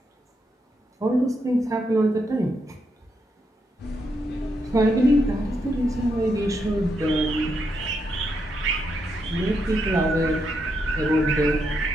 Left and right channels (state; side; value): normal; both; correlation 0.80